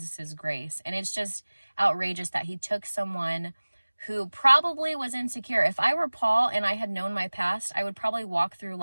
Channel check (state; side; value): inverted; both; correlation -1.00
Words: grace. And it's just outrageous that he took someone who probably was insecure. If I were Paul and I had known my past, I would probably walk through